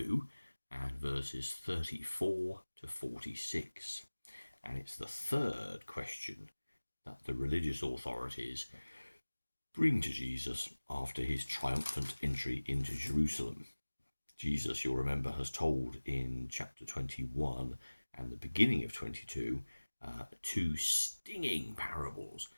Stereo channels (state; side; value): inverted; both; correlation -1.00